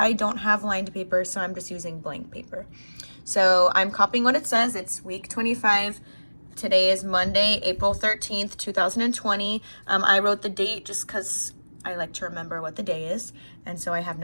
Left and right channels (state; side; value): inverted; both; correlation -1.00